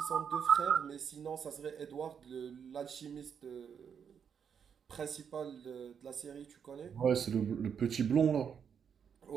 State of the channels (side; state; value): left; quieter; 7.3 dB